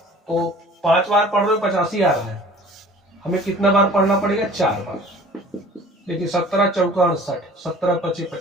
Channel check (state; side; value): normal; both; correlation 0.47